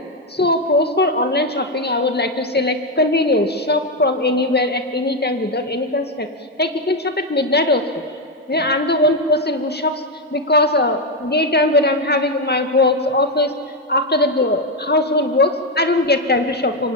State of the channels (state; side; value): normal; both; correlation 0.06